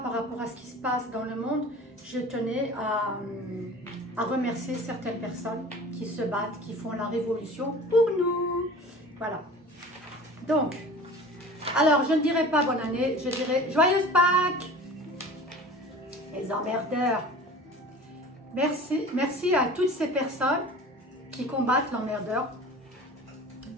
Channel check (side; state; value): both; normal; correlation 0.40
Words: par rapport à ce qui se passe dans le monde, je tenais à remercier certaines personnes qui se battent, qui font la révolution pour nous. Voilà. Donc, alors je ne dirai pas bonne année, je dirai joyeuse Pâques. Les emmerdeurs. Merci à toutes ces personnes qui combattent l'emmerdeur